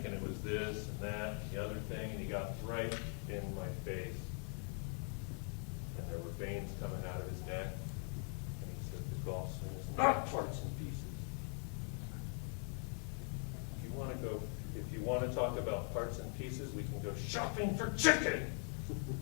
it was this and that and the other thing, and he got right in my face. And there were veins coming out of his neck. And he said, the golf swing is not parts and pieces. If you want to talk about parts and pieces, we can go shopping for chicken.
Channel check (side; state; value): right; quieter; 38.4 dB